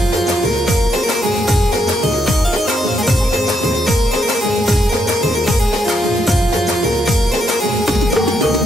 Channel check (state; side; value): normal; both; correlation 0.77